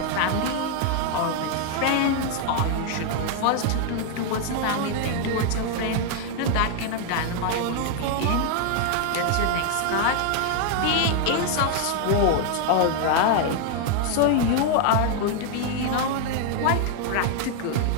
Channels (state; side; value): different; both; correlation 0.00